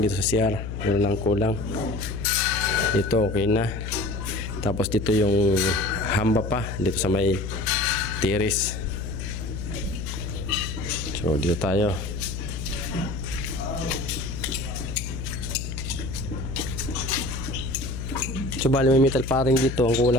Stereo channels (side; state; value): left; noise; hum, 6 dB below the sound